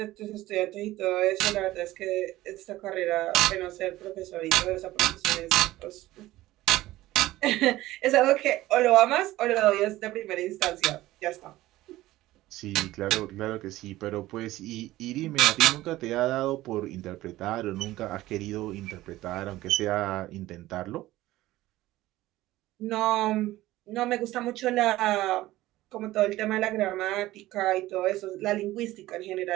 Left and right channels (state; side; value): quieter; left; 16.6 dB